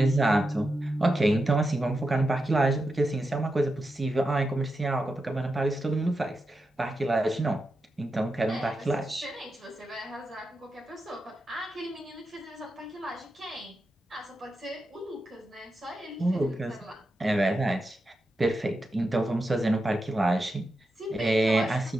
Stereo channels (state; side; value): normal; both; correlation 0.88